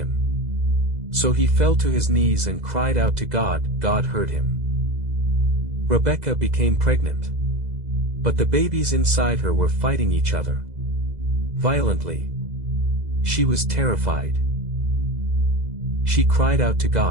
So he fell to his knees and cried out to God. God heard him. Rebekah became pregnant. But the babies inside her were fighting each other violently. She was terrified. She cried out to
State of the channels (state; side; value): late; left; 2.0 ms